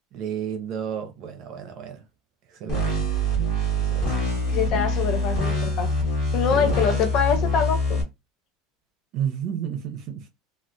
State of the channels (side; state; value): both; normal; correlation 0.38